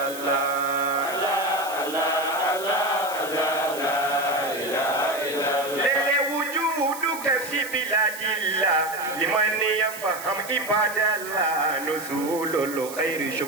تفهم عباد الله نزول الخير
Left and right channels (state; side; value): noise; right; hiss, 12 dB below the sound